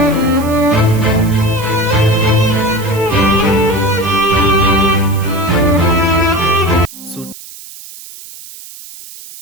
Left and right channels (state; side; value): noise; right; hiss, 16 dB below the sound